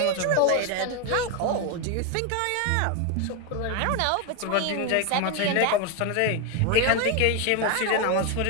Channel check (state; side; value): different; both; correlation 0.02